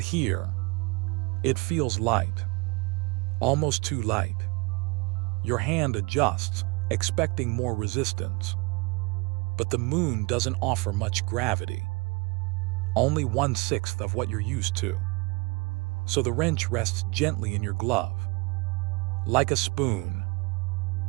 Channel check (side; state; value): left; quieter; 27.2 dB